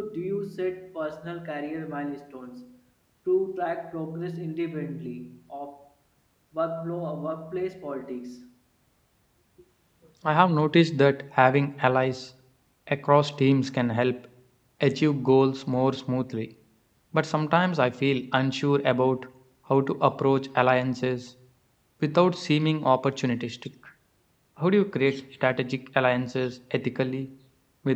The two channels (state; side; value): identical; both; correlation 1.00